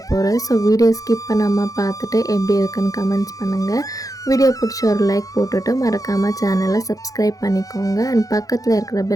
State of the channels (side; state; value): right; late; 0.17 ms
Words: போகிறேன். ஸோ வீடியோ ஸ்கிப் பண்ணாமல் பார்த்துட்டு எப்படி இருக்குன்னு கமெண்ட்ஸ் பண்ணுங்கள். வீடியோ பிடிச்ச ஒரு லைக் போட்டுட்டு மறக்காமல் சேனலை சப்ஸ்கிரைப் பண்ணிக்கோங்க. அண்ட் பக்கத்தில் இருக்கிற